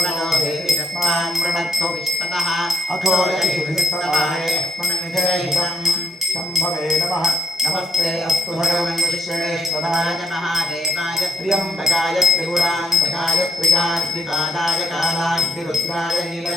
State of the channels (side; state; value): both; normal; correlation 0.73